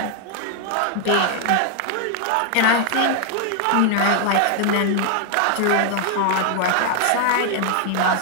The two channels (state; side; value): different; both; correlation 0.00